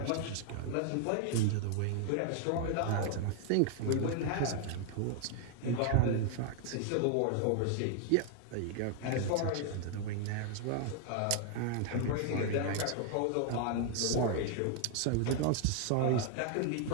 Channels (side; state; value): both; different; correlation 0.00